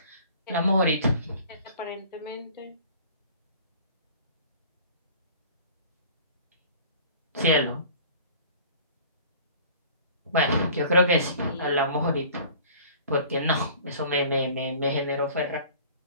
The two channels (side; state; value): both; inverted; correlation -0.47